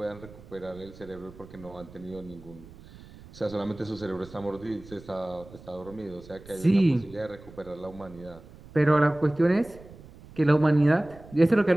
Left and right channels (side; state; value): right; noise; rumble, 20 dB below the sound